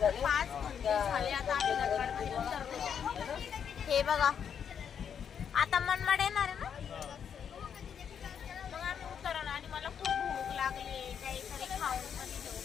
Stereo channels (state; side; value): quieter; right; 7.8 dB